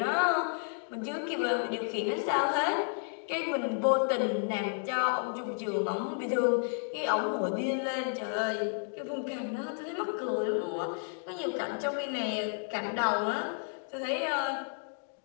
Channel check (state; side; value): silent; right; 57 dB below the other